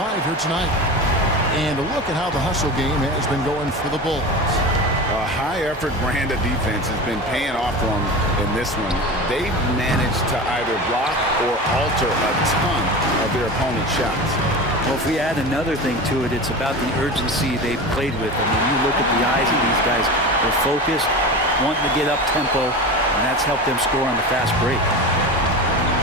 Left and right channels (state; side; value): normal; both; correlation 0.29